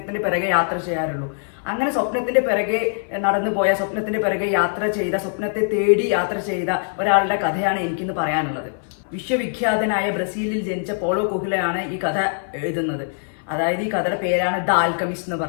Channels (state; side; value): silent; right; 59 dB below the other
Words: പിറകെ യാത്ര ചെയ്യാറുള്ളൂ. അങ്ങനെ സ്വപ്നത്തിന്റെ പിറകെ നടന്നു പോയ, സ്വപ്നത്തിന്റെ പിറകെ യാത്ര ചെയ്ത, സ്വപ്നത്തെ തേടി യാത്ര ചെയ്ത ഒരാളുടെ കഥയാണ് എനിക്കിന്ന് പറയാനുള്ളത്. വിശ്വവിഖ്യാതനായ ബ്രസീലിൽ ജനിച്ച പോളോ കൊഹ്ലയാണ് ഈ കഥ എഴുതുന്നത്. അതായത് ഈ കഥയുടെ പേരാണ് ദ ആൽക്കമിസ്റ്റ് എന്ന്